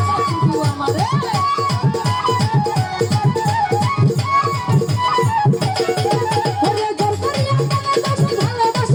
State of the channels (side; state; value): both; identical; correlation 1.00